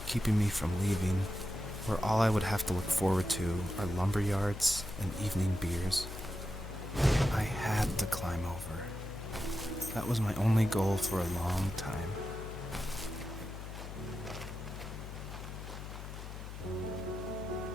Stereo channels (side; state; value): left; noise; hum, 9 dB below the sound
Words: keeping me from leaving, where all I would have to look forward to are lumber yards and evening beers. I had to climb over. That was my only goal for a long time.